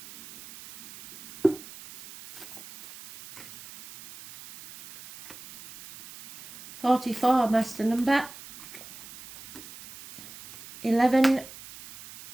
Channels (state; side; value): noise; right; hiss, 17 dB below the sound